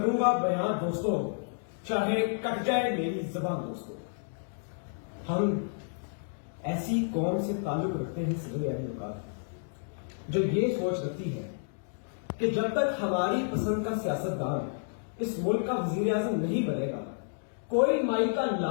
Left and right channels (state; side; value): silent; right; digital silence